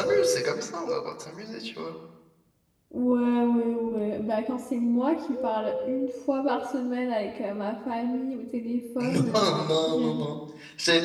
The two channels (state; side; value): identical; both; correlation 1.00